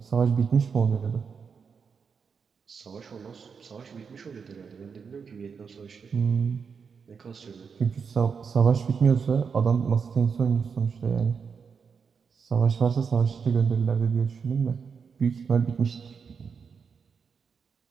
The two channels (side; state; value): left; quieter; 6.0 dB